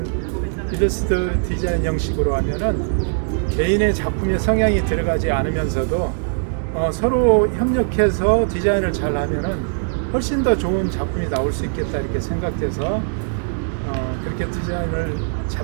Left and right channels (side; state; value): left; silent; digital silence